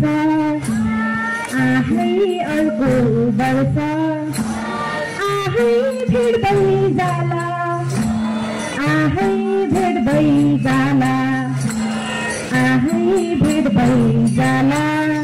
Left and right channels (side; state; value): both; identical; correlation 1.00